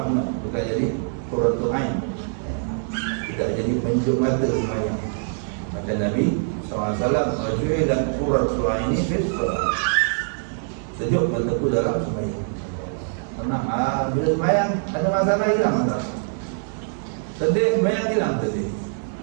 bukan jadi qurratu ain. tidak jadi penjuk mata sembahyang. Kata Nabi SAW, "Wajuilat qurratu aini fi shalah." Sejuk mataku dalam sembahyang. Tenang, bila sembahyang ada masalah, hilang masalah. Sedih sembahyang, hilang sedih.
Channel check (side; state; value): left; silent; digital silence